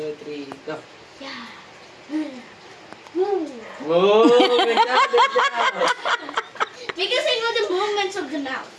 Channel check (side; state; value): both; identical; correlation 1.00